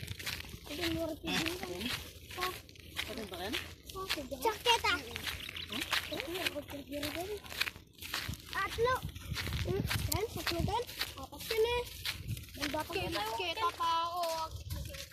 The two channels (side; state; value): both; identical; correlation 1.00